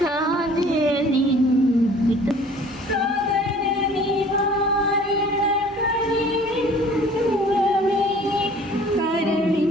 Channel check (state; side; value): normal; both; correlation 0.51